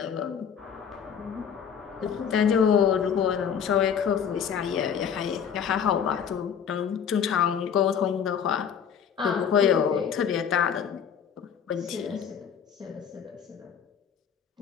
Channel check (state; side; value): quieter; right; 7.7 dB